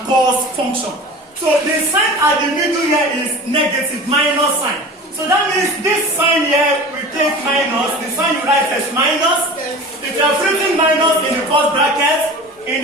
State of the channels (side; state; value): both; normal; correlation 0.36